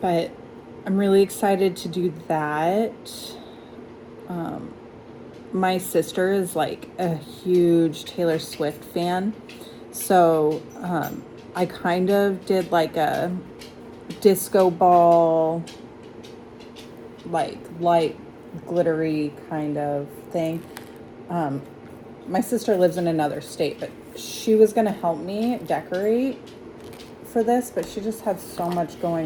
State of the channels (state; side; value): identical; both; correlation 1.00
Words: But I'm really excited to do that. My sister is like a huge Taylor Swift fan, so I kind of did like a disco ball, like light glittery kind of thing. My sister lives in another state, but she was going to help me decorate for this, but she just had so much